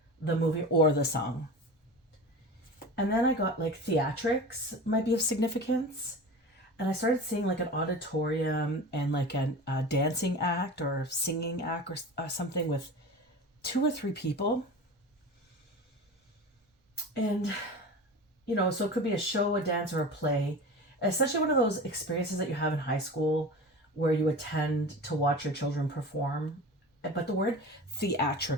the movie or the song. And then I got like theatrics might be of significance. And I started seeing like an auditorium and like a dancing act or singing act or something with 2 or 3 people. And, so it could be a show, a dance, or a play. Essentially one of those experiences that you have in high school where you attend to watch your children perform. But the word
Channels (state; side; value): normal; both; correlation 0.33